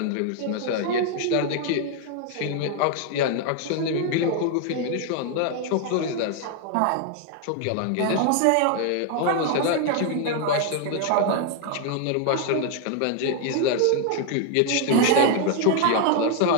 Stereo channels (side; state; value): both; different; correlation 0.00